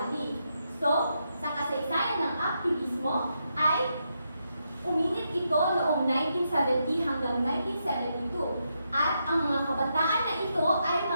So, sa kasaysayan ng aktivismo ay uminit ito noong 1970 hanggang 1972. At ang mga kabataan na ito ay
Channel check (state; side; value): inverted; both; correlation -0.82